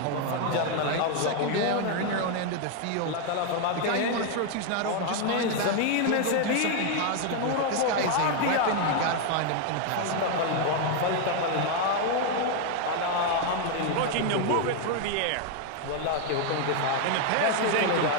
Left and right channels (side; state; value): both; different; correlation 0.01